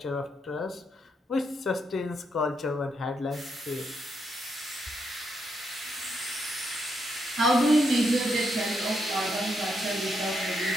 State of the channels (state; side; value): normal; both; correlation 0.79